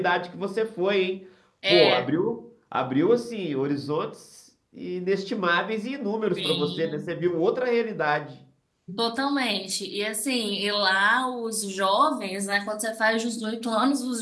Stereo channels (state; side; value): identical; both; correlation 1.00